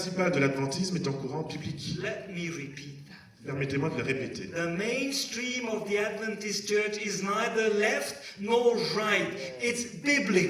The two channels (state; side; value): identical; both; correlation 1.00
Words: de l'adventisme est un courant biblique. Let me repeat that. Permettez-moi de le répéter. The mainstream of the Adventist church is neither left nor right. It's